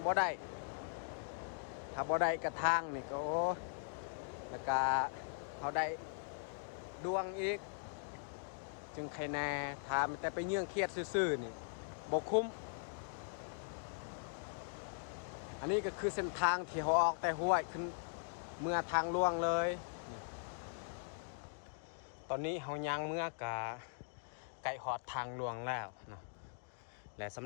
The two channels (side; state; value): right; silent; digital silence